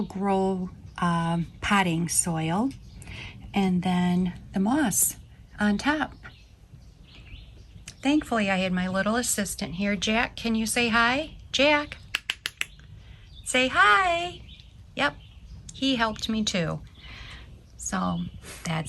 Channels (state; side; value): identical; both; correlation 1.00